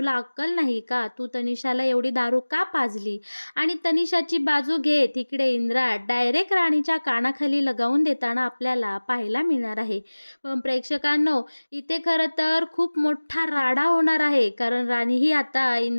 अक्कल नाही का, तू तनिषाला एवढी दारू का पाजली? आणि तनिषाची बाजू घेत इकडे इंद्रा डायरेक्ट राणीच्या कानाखाली लगावून देताना आपल्याला पाहायला मिळणार आहे. पण प्रेक्षकांनो, इथे खरं तर खूप मोठा राडा होणार आहे, कारण राणी ही आता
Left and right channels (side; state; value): both; inverted; correlation -1.00